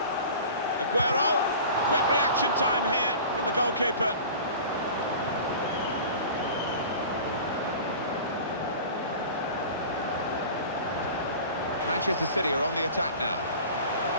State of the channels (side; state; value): both; inverted; correlation -0.39